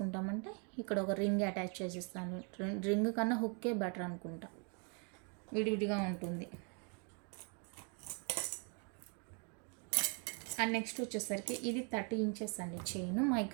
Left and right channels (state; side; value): quieter; left; 37.8 dB